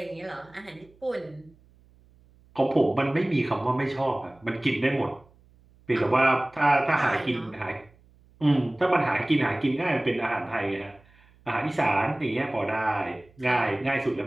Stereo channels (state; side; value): noise; right; hum, 29 dB below the sound